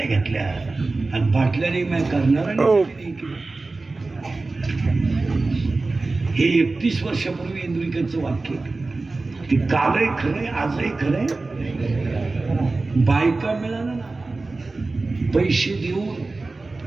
घेतल्या आणि बाटल्याने मैं करणाऱ्याने. हे 31 वर्षापूर्वी इंद्रिकचं वाक्य. ते कालही खरंय, आजही खरंय. बायका मिळाला ना पैसे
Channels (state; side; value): quieter; left; 3.5 dB